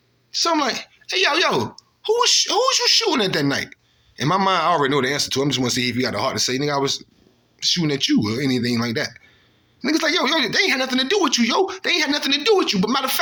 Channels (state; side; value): identical; both; correlation 1.00